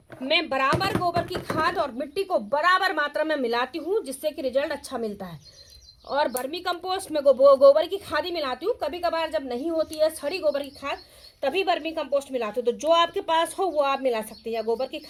मैं बराबर गोबर की खाद और मिट्टी को बराबर मात्रा में मिलाती हूँ, जिससे कि रिजल्ट अच्छा मिलता है। और वर्मी कंपोस्ट में गोबर की खाद ही मिलाती हूँ। कभी कभार जब नहीं होती है सड़ी गोबर की खाद, तभी वर्मी कंपोस्ट मिलाती हूँ। तो जो आपके पास हो वो आप मिला सकते हैं, या गोबर की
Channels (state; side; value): identical; both; correlation 1.00